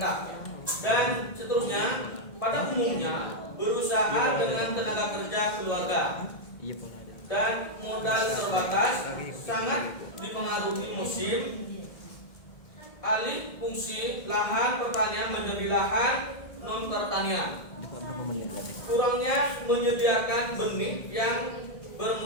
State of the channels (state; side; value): late; right; 1.7 ms